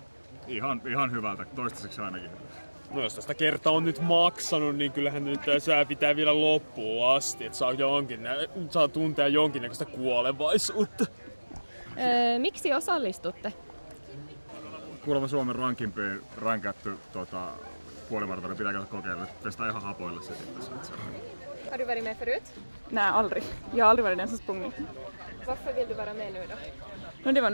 Ihan hyvältä, toistaiseksi ainakin. No jos tästä kertaa on nyt maksanut, niin kyllähän nyt sää pitää vielä loppuun asti, että saa tuntea jonkinnäköistä kuolevaisuutta. Miksi osallistutte? Kuulemma Suomen rankimpiin rankätty puolimaratoni pitää käydä kokeilla. Testaa ihan hapoilla se sitten. Har du varit med förut? Nej, aldrig. Jag har aldrig varit den som sprungit. Varför vill du vara med nu då? No, det var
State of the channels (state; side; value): inverted; both; correlation -1.00